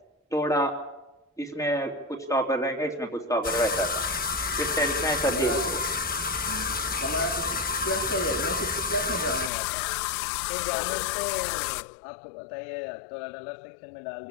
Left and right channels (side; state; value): right; drops out; at 9.5 s